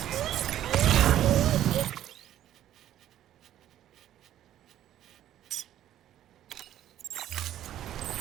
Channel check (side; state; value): left; quieter; 12.0 dB